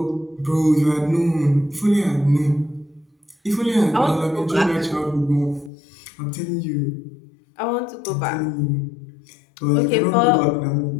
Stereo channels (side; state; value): right; drops out; at 5.7 s